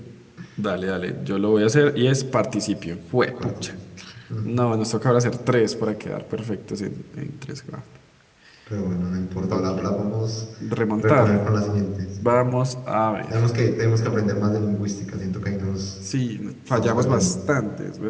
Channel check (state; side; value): identical; both; correlation 1.00